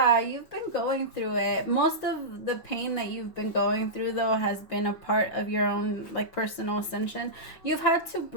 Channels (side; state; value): right; late; 5.7 ms